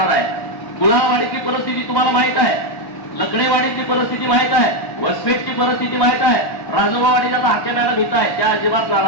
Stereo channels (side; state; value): right; late; 1.1 ms